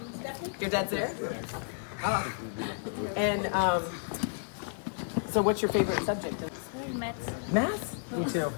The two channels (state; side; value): silent; right; digital silence